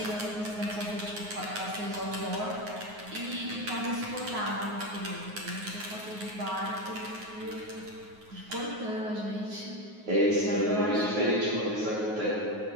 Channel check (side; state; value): left; late; 9.5 ms